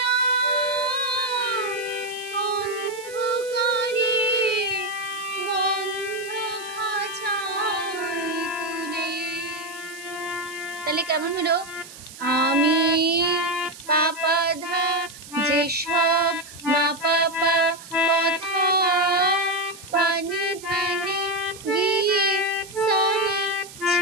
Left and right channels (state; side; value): noise; right; hiss, 17 dB below the sound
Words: হলো আমি পাপা ধা যেসব মা পাপা কথা পানি ধানে গিয়ে সানি